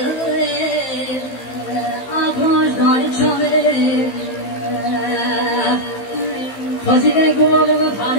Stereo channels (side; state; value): right; late; 15 ms